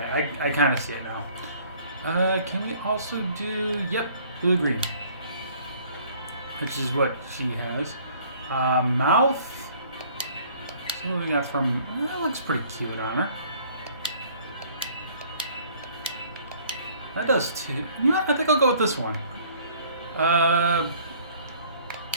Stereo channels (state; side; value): inverted; both; correlation -0.56